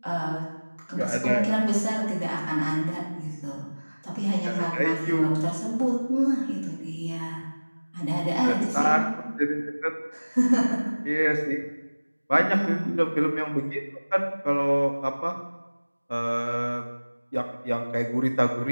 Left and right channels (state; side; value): inverted; both; correlation -1.00